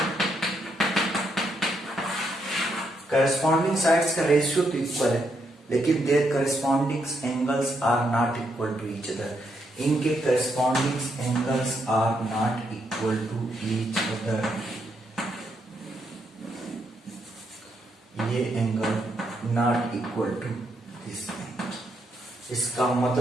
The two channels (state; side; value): normal; both; correlation 0.78